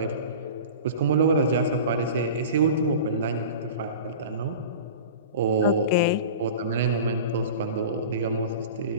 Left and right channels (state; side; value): inverted; both; correlation -0.35